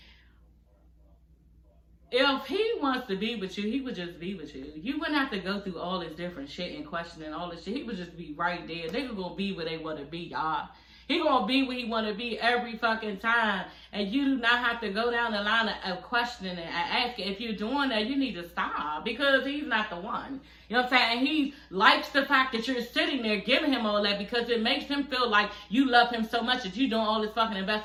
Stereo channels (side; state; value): both; identical; correlation 1.00